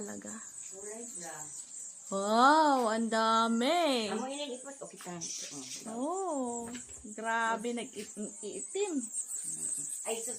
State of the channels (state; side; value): identical; both; correlation 1.00